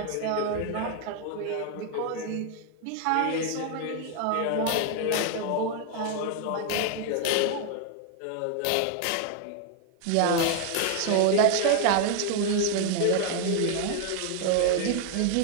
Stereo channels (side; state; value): both; different; correlation 0.01